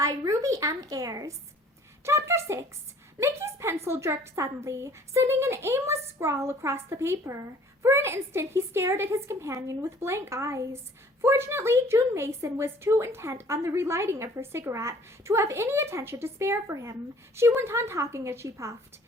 Ruby M. Ayres. Chapter 6. Mickey's pencil jerked suddenly, sending an aimless scrawl across the paper. For an instant he stared at his companion with blank eyes. Fortunately, June Mason was too intent on the relighting of her cigarette to have any attention to spare for him. She went on talking as she puffed.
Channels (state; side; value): normal; both; correlation 0.54